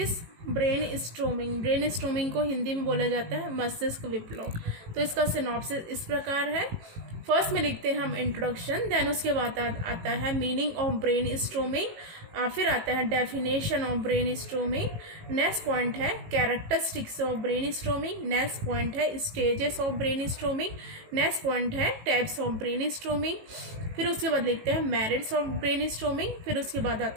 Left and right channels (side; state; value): left; late; 18 ms